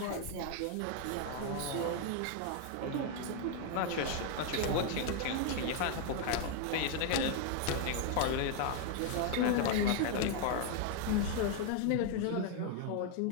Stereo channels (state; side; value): different; both; correlation 0.00